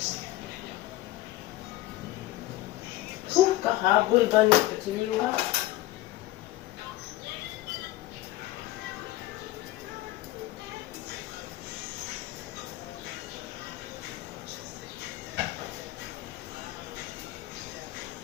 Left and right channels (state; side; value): quieter; right; 16.6 dB